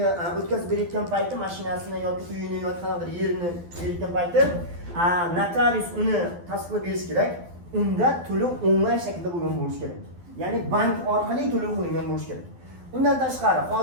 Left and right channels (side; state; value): left; late; 12 ms